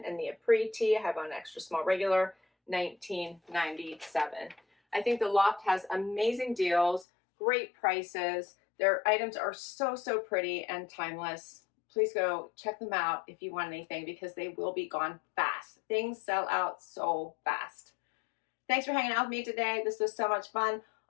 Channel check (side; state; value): right; drops out; at 7.1 s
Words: and the Apres tee I have on extra small regular, $19.97. I think the Loft has amazing deals, great prices. Their items are so pretty and timeless. Please go check them out if you want anything, because they will be gone fast. Things sell out so fast. Thanks for hanging out with me today. This was so much fun.